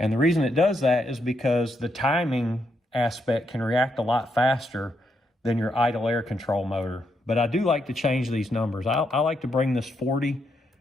the reason it does that is because the timing aspect can react a lot faster than your idle air control motor. But I do like to change these numbers. I like to bring this 40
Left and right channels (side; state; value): both; normal; correlation 0.79